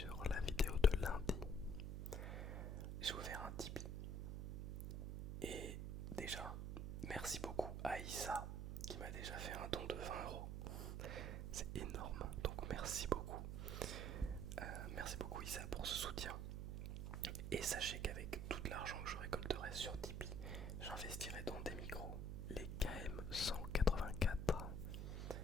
la vidéo de lundi, j'ai ouvert un Tipeee. Et déjà, merci beaucoup à Issa qui m'a déjà fait un don de 20€. C'est énorme, donc merci beaucoup. Merci beaucoup Issa pour ce soutien. Et sachez qu'avec tout l'argent que je récolterai sur Tipeee, j'investirai dans des micros, les KM184.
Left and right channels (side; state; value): right; noise; hum, 3 dB below the sound